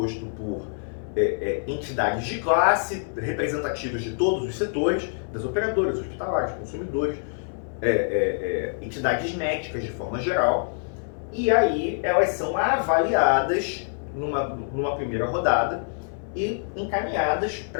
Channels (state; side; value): silent; right; 61 dB below the other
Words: por entidades de classe, representativas de todos os setores, das operadoras, hospitalares, consumidores, entidades médicas de forma geral, e aí elas são avaliadas numa primeira rodada e encaminhadas